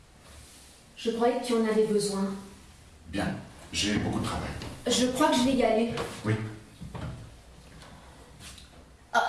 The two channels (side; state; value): both; identical; correlation 1.00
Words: je croyais que tu en avais besoin. Bien, j'ai beaucoup de travail. Je crois que je vais y aller. Oui.